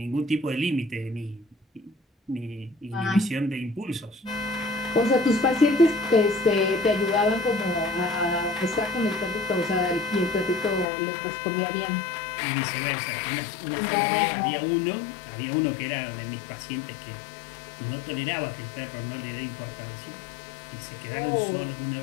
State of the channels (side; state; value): right; drops out; at 10.9 s